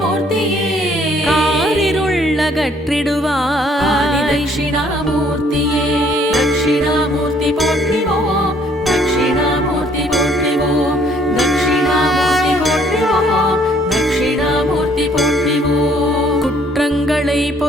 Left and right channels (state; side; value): normal; both; correlation 0.62